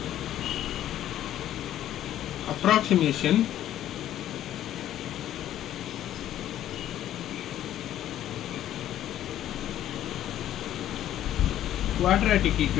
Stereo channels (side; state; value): right; quieter; 12.1 dB